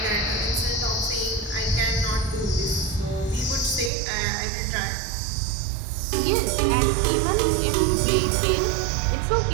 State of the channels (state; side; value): drops out; left; at 3.9 s